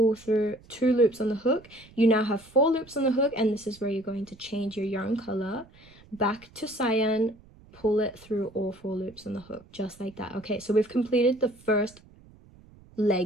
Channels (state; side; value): noise; right; rumble, 25 dB below the sound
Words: through 2 loops on the hook. You now have 4 loops on the hook, and this is where you're going to change your yarn color back to cyan, pull it through all 4 loops on the hook, just like that. Okay, so we've completed the first